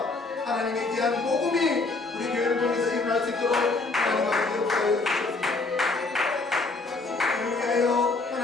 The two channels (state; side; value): quieter; right; 3.5 dB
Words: 하나님의 귀한 복음이 우리 교회를 통해서 일어날 수 있도록 하나님 아버지 역사하여 주셨습니다. 위하여